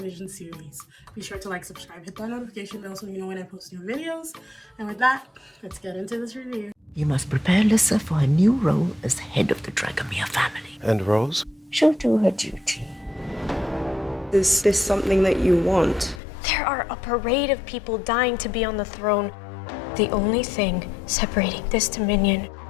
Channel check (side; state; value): right; drops out; at 16.2 s